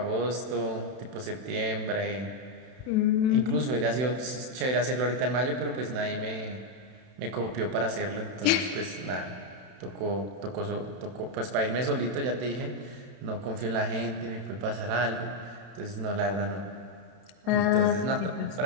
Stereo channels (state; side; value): late; left; 31 ms